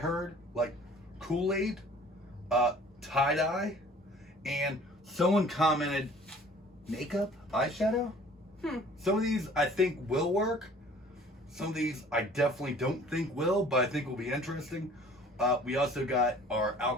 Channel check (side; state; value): both; normal; correlation 0.51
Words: like Kool-Aid, tie-dye, and someone commented makeup, eyeshadow. Some of these I think will work. Some of these I definitely don't think will, but I think will be interesting. We also got our